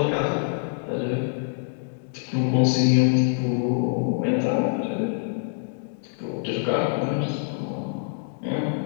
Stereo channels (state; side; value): silent; right; digital silence